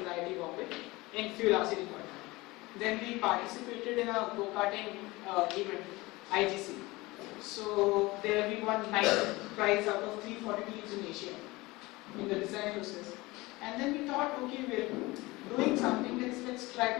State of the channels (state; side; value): quieter; right; 21.5 dB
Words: the IIT Bombay in Fuel RC department. Then we participated in a go-karting event, IGC. So there we won 9th prize out of 340 teams in Asia in the design process. And then we thought, okay, we're doing something, let's try